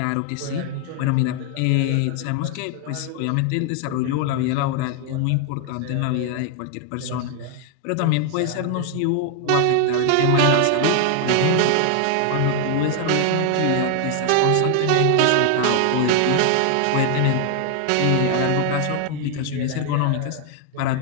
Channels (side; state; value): both; different; correlation 0.00